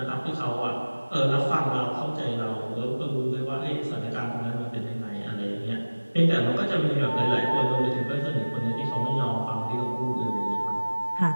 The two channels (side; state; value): both; inverted; correlation -1.00